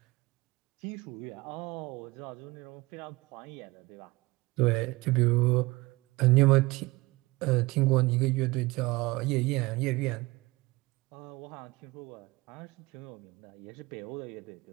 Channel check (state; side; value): quieter; left; 22.3 dB